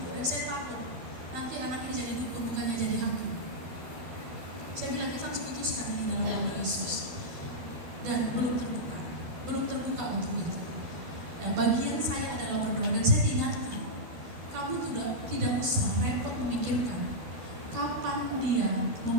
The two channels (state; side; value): late; left; 12 ms